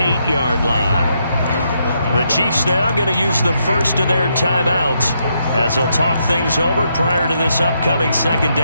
line. The Chiefs now going to use the first of their timeouts as they'll talk things over prior to this upcoming 2nd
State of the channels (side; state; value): both; inverted; correlation -0.78